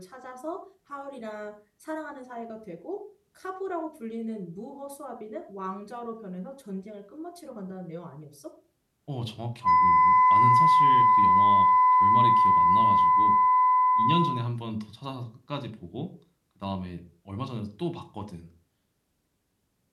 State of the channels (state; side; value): identical; both; correlation 1.00